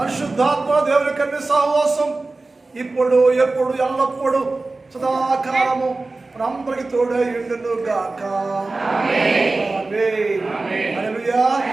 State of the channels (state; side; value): quieter; left; 3.4 dB